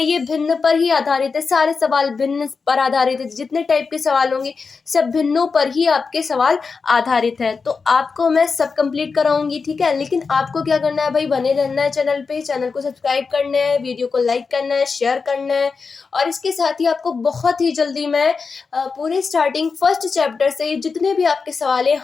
ये भिन्न पर ही आधारित है। सारे सवाल भिन्न पर आधारित है, जितने टाइप के सवाल होंगे सब भिन्नों पर ही आपके सवाल आधारित है। तो आपको मैं सब कंप्लीट कराऊंगी, ठीक है। लेकिन आपको क्या करना है भाई, बने रहना है चैनल पे, चैनल को सब्सक्राइब करना है, वीडियो को लाइक करना है, शेयर करना है। और इसके साथ ही आपको बहुत ही जल्दी मैं पूरे स्टार्टिंग फर्स्ट चैप्टर से जितने भी आपके सवाल हैं,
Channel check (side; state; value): right; quieter; 4.9 dB